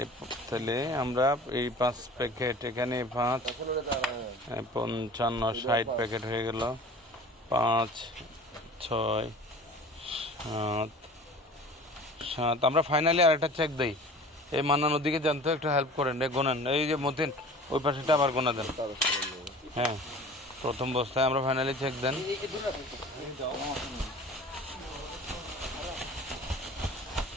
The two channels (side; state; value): both; normal; correlation 0.42